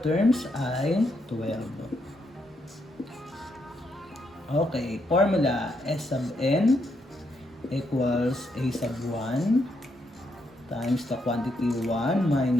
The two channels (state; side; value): normal; both; correlation 0.78